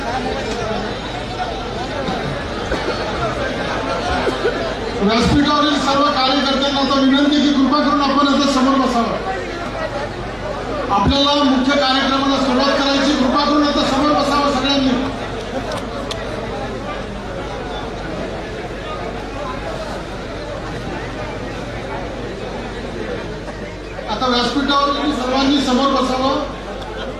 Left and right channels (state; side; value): identical; both; correlation 1.00